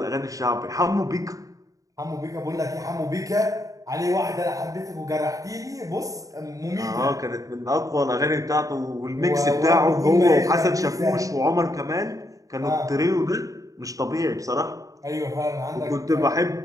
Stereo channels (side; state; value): left; late; 0.16 ms